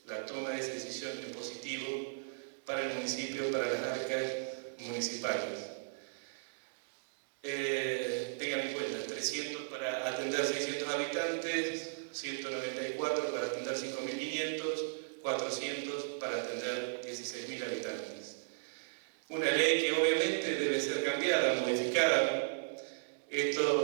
la toma de esa decisión en positivo para el municipio, para las arcas municipales. Tengan en cuenta, 300 para atender 600 habitantes, 194 para atender 5.500, 400 para atender 16.000 habitantes. Una ley que obviamente debe ser cambiada, modificada.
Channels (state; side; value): silent; left; digital silence